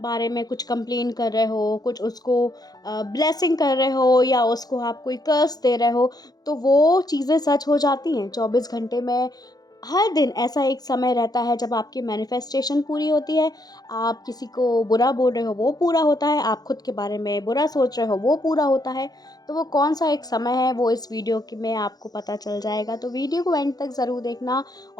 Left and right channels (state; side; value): late; right; 0.19 ms